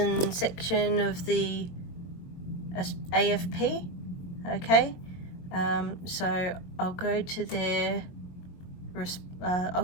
section of the A.F.P. Okay, so I'll go to their I'll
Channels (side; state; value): right; late; 22 ms